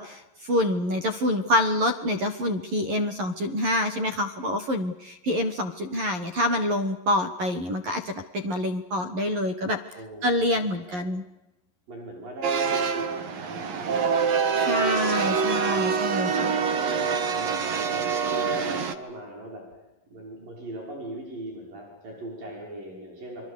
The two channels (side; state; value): left; late; 11 ms